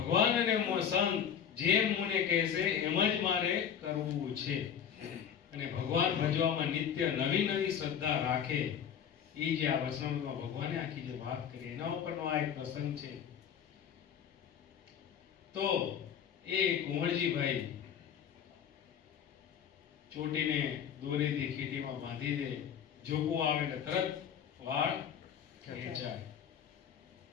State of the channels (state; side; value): quieter; right; 8.4 dB